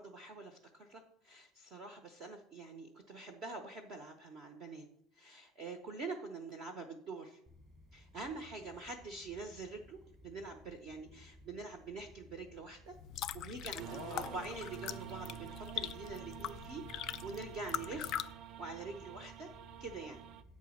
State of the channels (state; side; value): normal; both; correlation 0.39